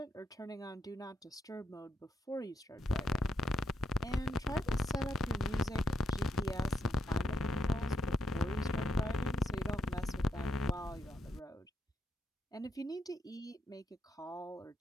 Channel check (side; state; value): both; normal; correlation 0.79